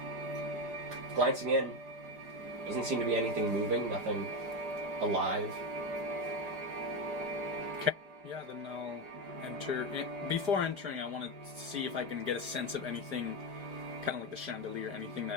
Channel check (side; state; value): left; late; 5.0 ms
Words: Glancing in, doesn't seem to be anything moving, nothing alive. Okay. Yeah, then I'll enter. Before entering, I want to see if I can get a sense of anything, kind of like the chandelier, anything